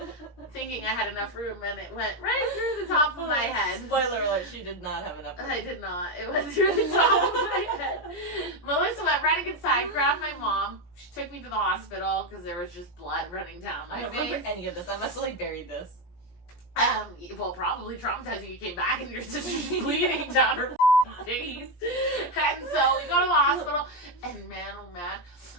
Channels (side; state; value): right; late; 17 ms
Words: Thinking I had enough room, and it went right through the top of my head. Spoiler alert, she did not have enough room. I did not. It went through the top of my head. Melissa went running inside, grabbed my mom. She took me to the hospital because there was just blood running down my face. I don't remember any of this. I must have like buried this. Well, probably traumatizing. You came back and your sister's bleeding down her face. And so we go to the hospital, and man, oh man,